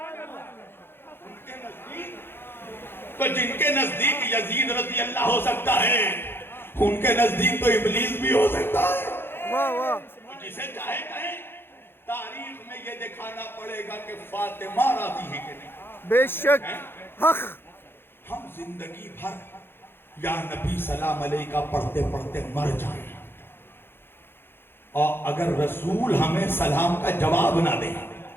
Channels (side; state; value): right; late; 0.11 ms